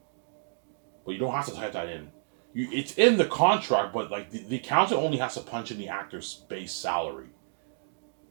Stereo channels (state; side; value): silent; left; digital silence